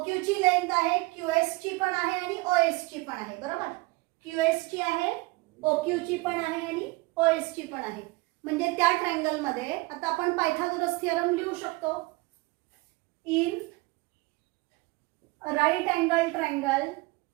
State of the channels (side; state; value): left; quieter; 23.5 dB